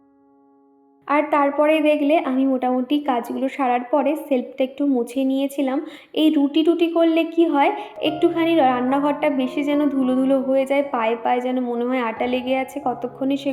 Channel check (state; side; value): identical; both; correlation 1.00